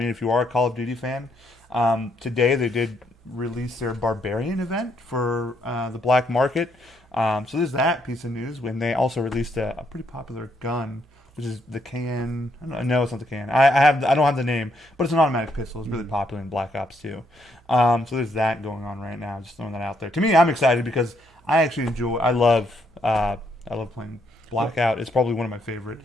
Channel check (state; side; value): normal; both; correlation 0.74